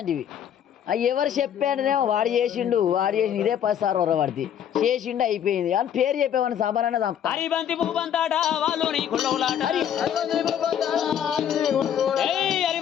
అవి ఎవరు చెప్పాడనేమో వాడు చేసిండు ఇదే 10 సార్లు వరవాడిది చేసిండు అయిపోయింది అని పేరు చెప్పేవాడిని సామాన్యంగా చంపుతా హరిబంతి భూబంతాట వాళ్ళు నీ కుళ్ళవులాట ఏయ్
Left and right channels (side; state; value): right; quieter; 9.4 dB